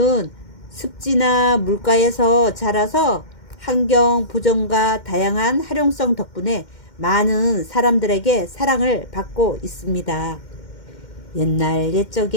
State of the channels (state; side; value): late; right; 2.1 ms